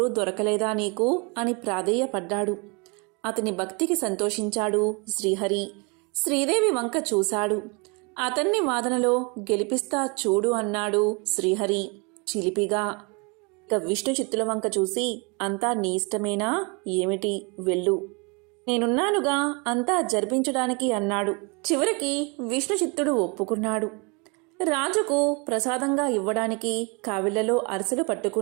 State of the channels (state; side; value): quieter; left; 31.1 dB